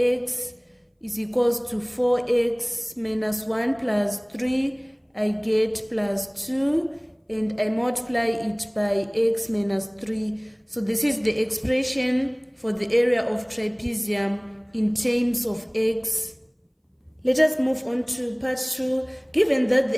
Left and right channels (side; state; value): both; identical; correlation 1.00